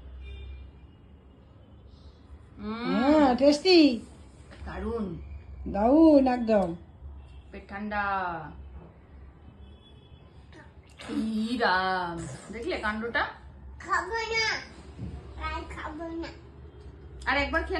হ্যাঁ টেস্টি, দারুন, দারুন একদম। পেট ঠান্ডা। রাম দেখলে কাণ্ডটা? খাবো না, আর খাবো না, আর একবার খেয়ে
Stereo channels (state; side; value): identical; both; correlation 1.00